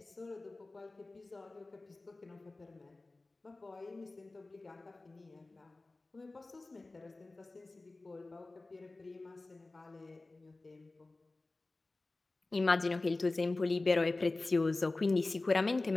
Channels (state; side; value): quieter; right; 3.2 dB